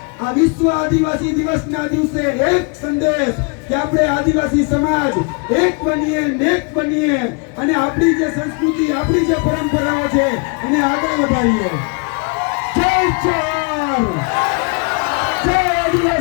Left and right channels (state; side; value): quieter; right; 33.7 dB